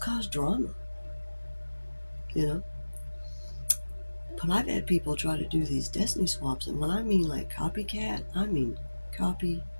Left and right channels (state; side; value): inverted; both; correlation -1.00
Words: cause drama, you know. But I've had people try to do these destiny swaps, and when I mean like copycat, I mean